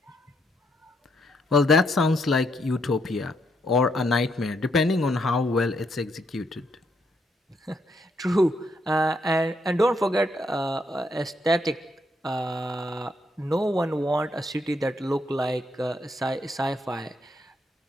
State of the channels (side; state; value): both; normal; correlation 0.76